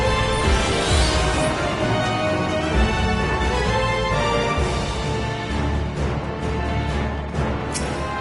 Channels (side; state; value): both; identical; correlation 1.00